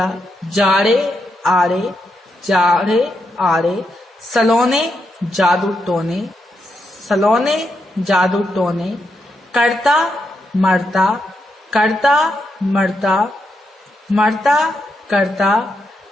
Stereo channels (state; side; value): normal; both; correlation 0.82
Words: जाड़े आड़े, जाड़े आड़े, सलोने जादू टोने, सलोने जादू टोने, करता मरता, करता मरता, मरता करता,